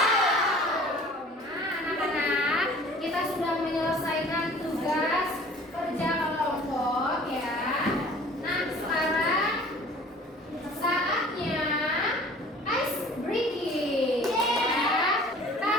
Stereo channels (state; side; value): normal; both; correlation 0.48